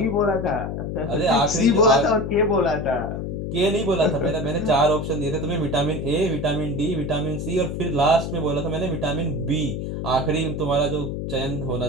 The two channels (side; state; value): left; noise; hum, 4 dB below the sound